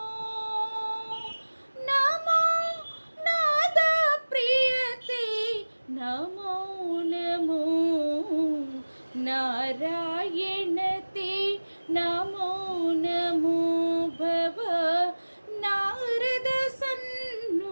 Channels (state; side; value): inverted; both; correlation -1.00